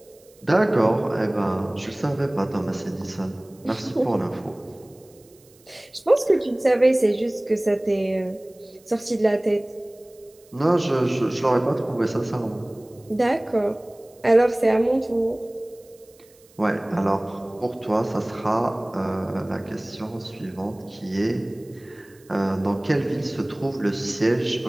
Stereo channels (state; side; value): noise; right; hiss, 29 dB below the sound